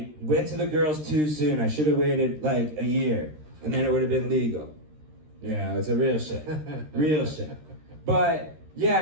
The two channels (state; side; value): late; left; 13 ms